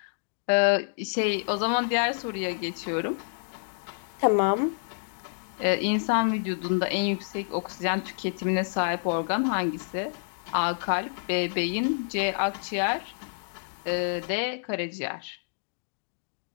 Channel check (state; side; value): silent; right; digital silence